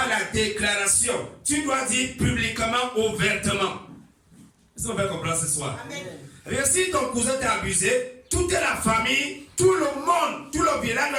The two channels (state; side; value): identical; both; correlation 1.00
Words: la déclaration. Tu dois dire publiquement, ouvertement. Est-ce qu'on va comprendre ce soir? Amen. Et si ton cousin t'a abusé, toute la famille, tout le monde, tout le village